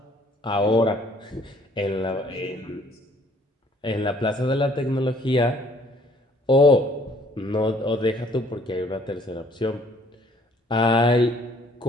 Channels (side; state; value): both; normal; correlation 0.60